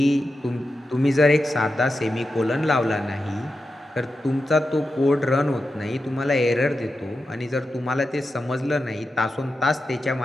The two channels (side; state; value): both; normal; correlation 0.90